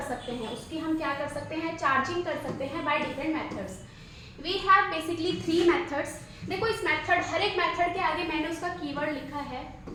सकते हैं, उसकी हम क्या कर सकते हैं, चार्जिंग कर सकते हैं by different methods. We have basically 3 methods. देखो इस मेथड, हर एक मेथड के आगे मैंने उसका कीवर्ड लिखा है।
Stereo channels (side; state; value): both; identical; correlation 1.00